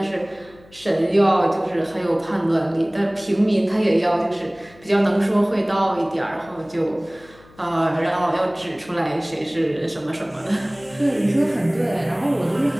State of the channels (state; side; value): noise; left; hum, 25 dB below the sound